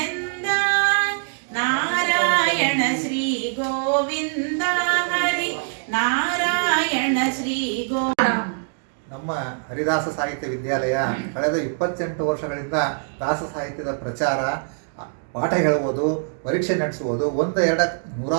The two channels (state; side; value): silent; left; digital silence